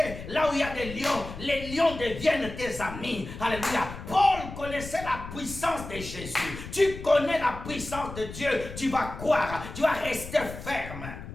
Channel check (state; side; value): noise; left; rumble, 11 dB below the sound